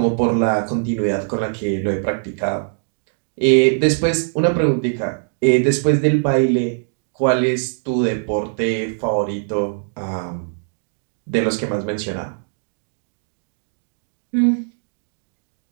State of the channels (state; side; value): silent; left; digital silence